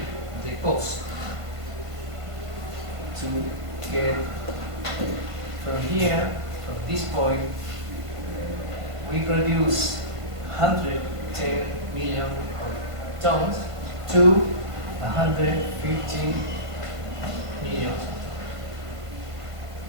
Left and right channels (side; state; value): left; late; 1.5 ms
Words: the cost to get from here, from this point, we produce 110 million tons to 150 million.